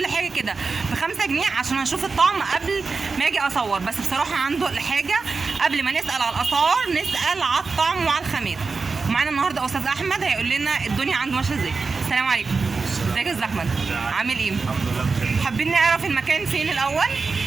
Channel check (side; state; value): left; quieter; 4.5 dB